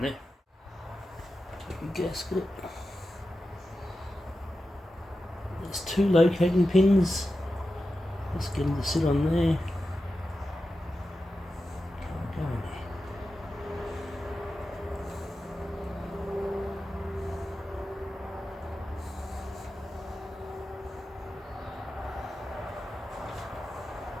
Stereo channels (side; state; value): both; normal; correlation 0.92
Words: there. Take the gasket. There's 2 locating pins. Let's get them to sit on there. Go in there.